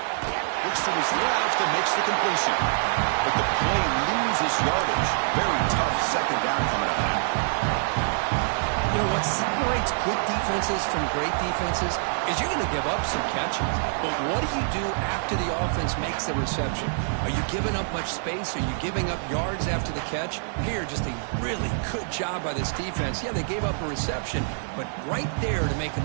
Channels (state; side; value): silent; left; 61 dB below the other